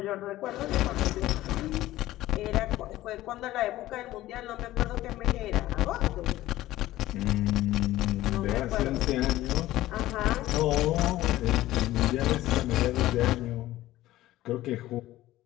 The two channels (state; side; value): quieter; right; 15.6 dB